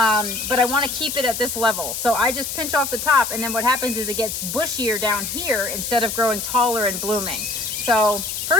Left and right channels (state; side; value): noise; left; hiss, 5 dB below the sound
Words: I want to keep it at this level. So I just pinch off the top, and then what happens is it gets bushier down here instead of growing taller and blooming. So